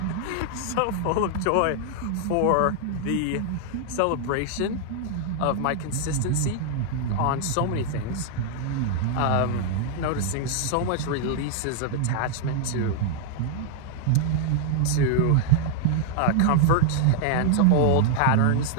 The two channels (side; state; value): both; different; correlation 0.00